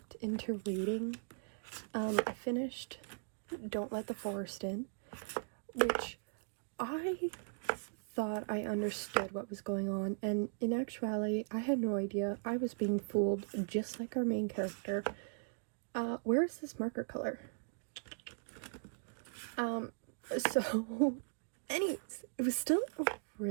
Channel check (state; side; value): silent; left; digital silence